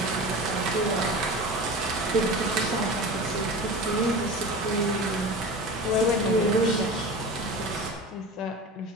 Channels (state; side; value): normal; both; correlation 0.32